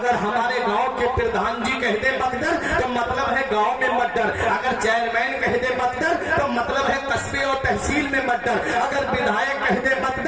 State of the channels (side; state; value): both; identical; correlation 1.00